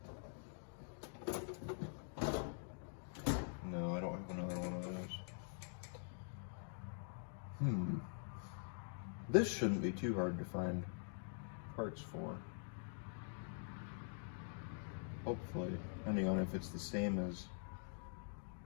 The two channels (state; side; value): silent; right; digital silence